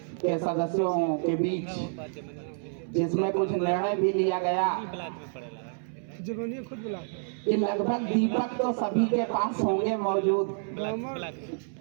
के सदस्यों के बीच, जिसमें कुछ निर्णय भी लिया गया कि लगभग दीपक तो सभी के पास होंगे मौजूद,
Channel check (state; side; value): silent; left; 59 dB below the other